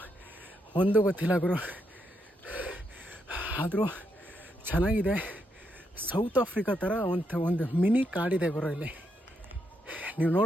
ಒಂದು ಗೊತ್ತಿಲ್ಲ ಗುರು, ಆದರೂ ಚೆನ್ನಾಗಿದೆ. ಸೌತ್ ಆಫ್ರಿಕಾ ಥರ ಒಂದು ಮಿನಿ ಕಾಡಿದೆ ಗುರು ಇಲ್ಲಿ. ನೀವು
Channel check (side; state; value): both; normal; correlation 0.79